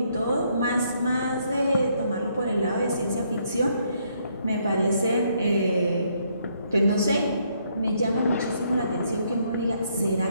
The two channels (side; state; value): both; inverted; correlation -0.71